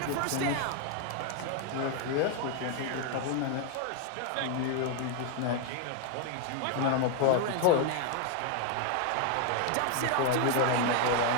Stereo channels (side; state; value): both; different; correlation 0.00